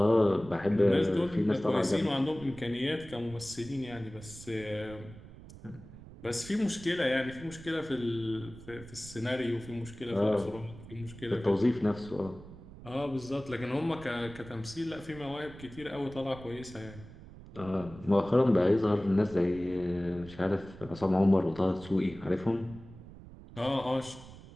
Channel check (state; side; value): noise; right; rumble, 17 dB below the sound